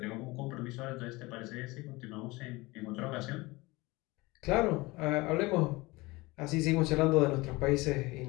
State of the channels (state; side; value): quieter; right; 22.5 dB